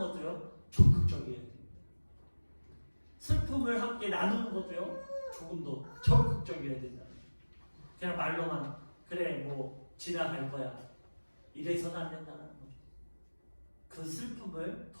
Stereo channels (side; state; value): both; inverted; correlation -1.00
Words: 적극적이에요. 슬픔을 함께 나누는 것도요 조금 더 적극적이어야 된다. 그냥 말로만 그래 뭐 지나갈 거야 이래서는 안 된다는 거죠. 그 슬픔을